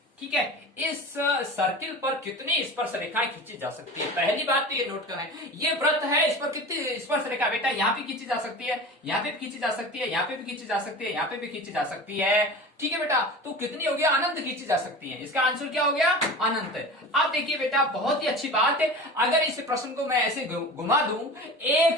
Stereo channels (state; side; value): normal; both; correlation 0.34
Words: ठीक है, इस सर्किल पर कितनी स्पर्श रेखाएं खींची जा सकती है। पहली बात तो ये नोट करें, ये वृत्त है, इस पर कितनी स्पर्श रेखा बेटा, यहाँ पे खींची जा सकती है, यहाँ पे भी खींची जा सकती है, यहाँ पे भी खींची जा सकती है, यहाँ पे भी खींची जा सकती है, ठीक है बेटा। तो कितनी हो गया, अनंत खींची जा सकती है, इसका आंसर क्या हो गया, अनंत। अब देखिए बेटा, बहुत ही अच्छी बात है, अगर इस प्रश्न को मैं ऐसे घुमा दूं,